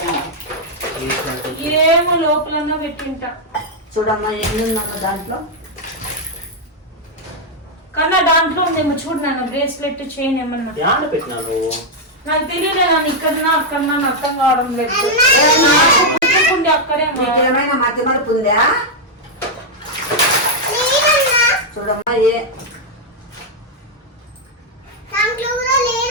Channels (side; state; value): both; normal; correlation -0.01